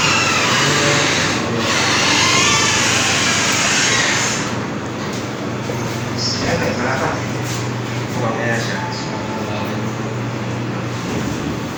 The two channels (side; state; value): both; identical; correlation 1.00